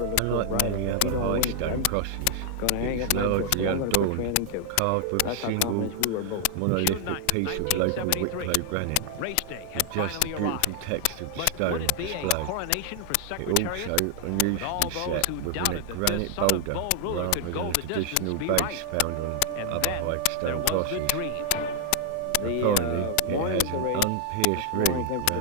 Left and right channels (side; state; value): both; different; correlation 0.00